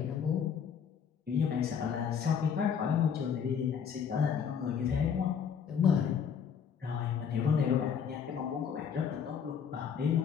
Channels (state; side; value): quieter; right; 7.3 dB